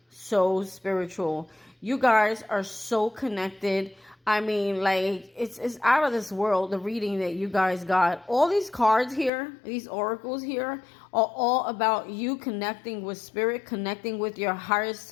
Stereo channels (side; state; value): right; drops out; at 9.3 s